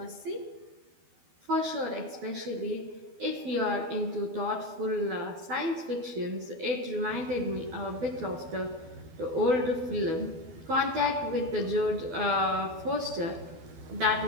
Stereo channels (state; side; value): late; left; 12 ms